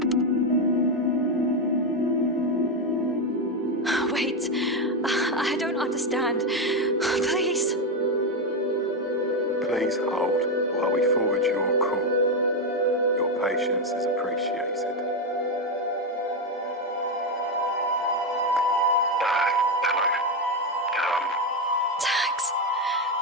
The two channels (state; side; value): normal; both; correlation 0.08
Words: Wait, I don't understand. Please. Please hold while we forward your call. Your patience is appreciated. Hello.